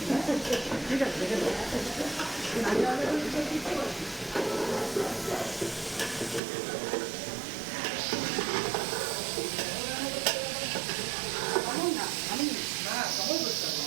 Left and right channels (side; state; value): left; drops out; at 6.4 s